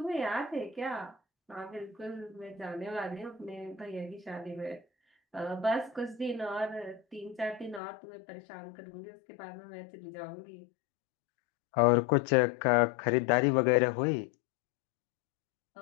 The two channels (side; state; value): right; drops out; at 7.8 s